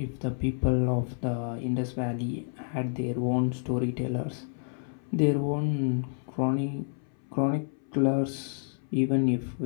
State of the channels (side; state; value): right; silent; 58 dB below the other